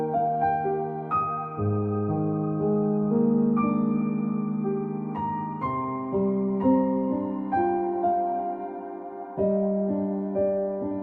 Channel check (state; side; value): identical; both; correlation 1.00